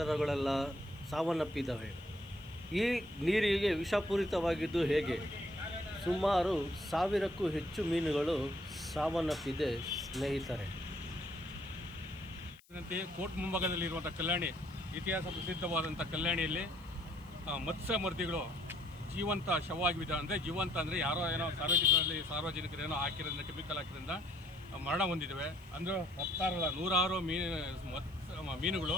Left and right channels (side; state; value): left; noise; hiss, 30 dB below the sound